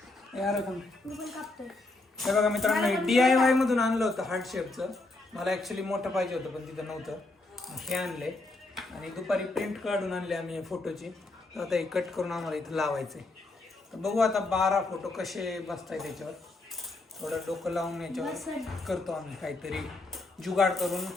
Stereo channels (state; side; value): quieter; right; 3.1 dB